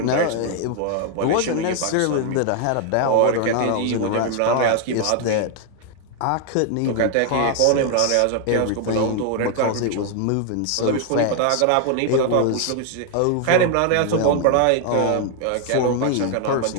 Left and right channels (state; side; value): different; both; correlation 0.00